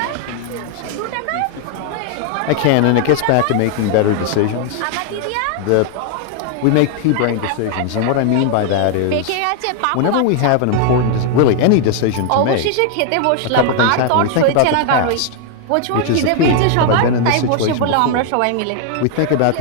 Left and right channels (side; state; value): both; different; correlation 0.00